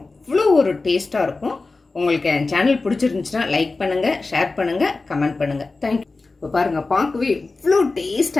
ஒரு டேஸ்ட்டாக இருக்கும். உங்களுக்கு என் சேனல் பிடிச்சிருந்துச்சுன்னா லைக் பண்ணுங்கள், ஷேர் பண்ணுங்கள், கமெண்ட் பண்ணுங்கள். தேங்க்யூ. இப்போ பாருங்கள் பார்க்கவே எவ்வளோ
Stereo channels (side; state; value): right; quieter; 3.6 dB